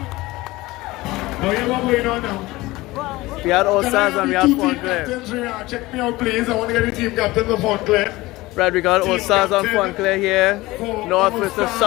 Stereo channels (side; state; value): right; quieter; 19.7 dB